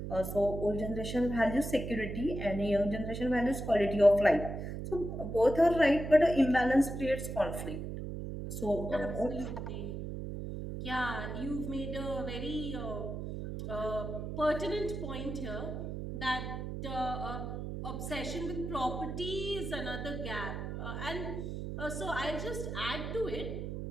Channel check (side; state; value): right; noise; hum, 6 dB below the sound